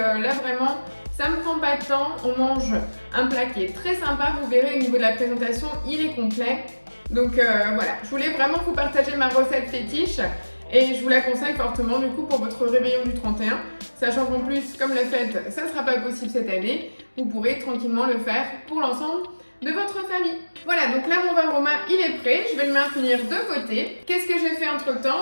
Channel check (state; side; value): inverted; both; correlation -1.00